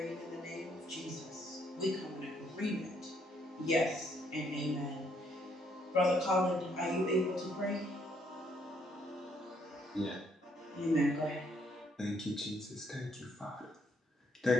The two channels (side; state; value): both; normal; correlation 0.70